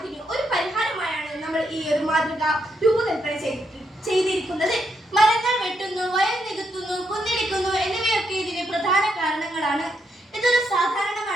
ഒരു പരിഹാരമായാണ് നമ്മൾ ഈ ഒരു മാതൃക രൂപകൽപ്പന ചെയ്തിരിക്കുന്നത്. മരങ്ങൾ വെട്ടുന്നു, വയൽ നികത്തുന്നു, കുന്നിടിക്കുന്നു എന്നിവയൊക്കെ ഇതിന് പ്രധാന കാരണങ്ങളാണ്. ഇതൊരു സാധാരണ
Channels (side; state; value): both; normal; correlation 0.79